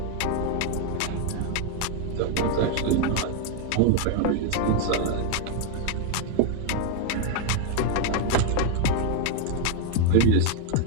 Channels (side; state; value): both; different; correlation 0.01